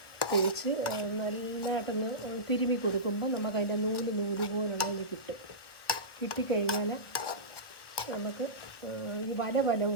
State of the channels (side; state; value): right; late; 1.0 ms